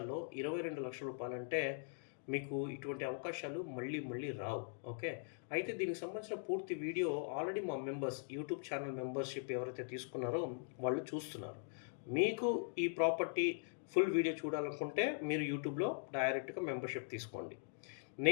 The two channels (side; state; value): right; silent; digital silence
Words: 22 లక్షల రూపాయలంటే మీకు ఇటువంటి అవకాశాలు మళ్ళీ మళ్ళీ రావు. ఓకే. అయితే దీనికి సంబంధించిన పూర్తి వీడియో ఆల్రెడీ మా మెంబర్స్ యూట్యూబ్ ఛానల్ మెంబర్షిప్ ఎవరైతే తీసుకున్నారో వాళ్ళు చూస్తున్నారు. మీకు ఈ ప్రాపర్టీ ఫుల్ వీడియో చూడాలనుకుంటే మీరు యూట్యూబ్లో డైరెక్ట్గా మెంబర్షిప్ తీసుకోండి.